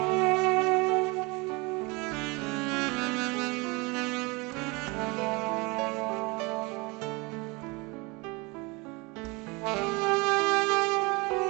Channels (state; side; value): quieter; left; 26.6 dB